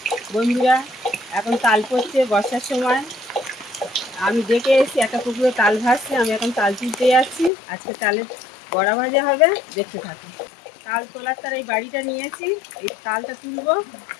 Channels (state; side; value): drops out; right; at 7.5 s